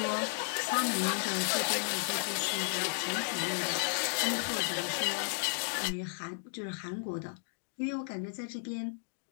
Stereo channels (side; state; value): right; silent; digital silence